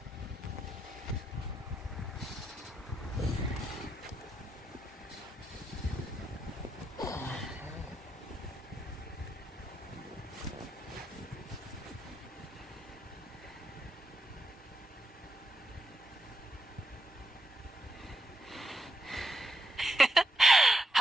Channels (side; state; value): both; normal; correlation 0.82